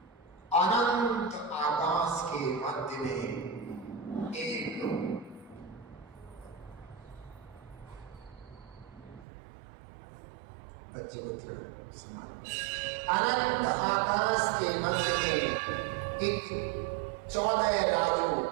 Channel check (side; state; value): left; drops out; at 9.2 s